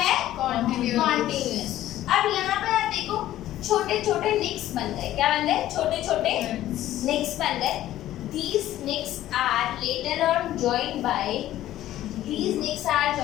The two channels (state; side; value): quieter; right; 13.7 dB